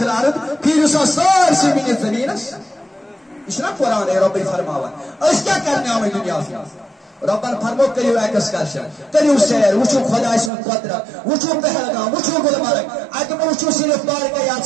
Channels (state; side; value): drops out; left; at 10.5 s